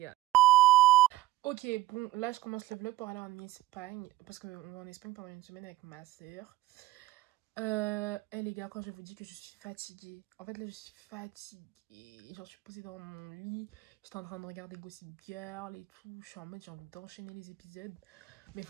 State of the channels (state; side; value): quieter; left; 16.4 dB